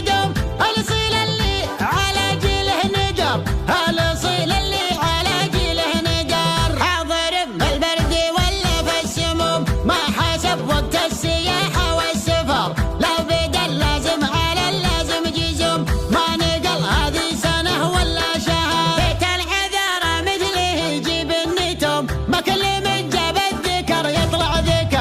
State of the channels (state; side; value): identical; both; correlation 1.00